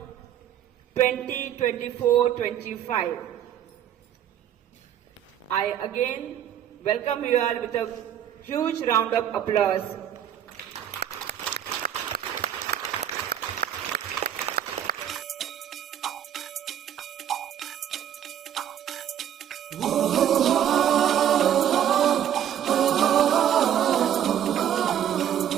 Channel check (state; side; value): quieter; left; 10.1 dB